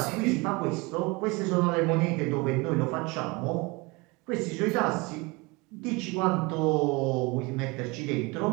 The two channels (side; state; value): left; quieter; 25.7 dB